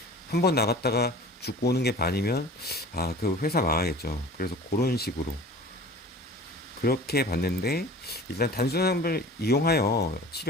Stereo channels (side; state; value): both; normal; correlation 0.42